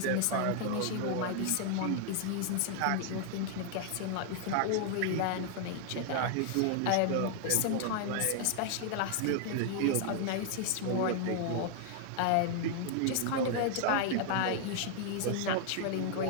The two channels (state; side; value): different; both; correlation 0.00